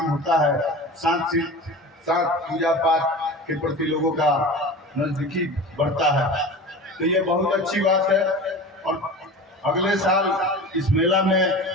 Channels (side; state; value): both; normal; correlation 0.34